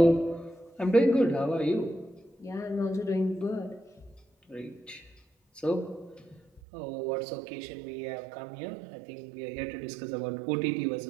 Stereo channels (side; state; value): left; drops out; at 6.6 s